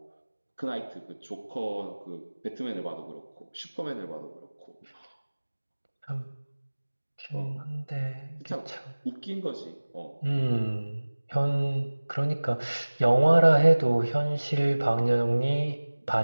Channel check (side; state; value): both; inverted; correlation -1.00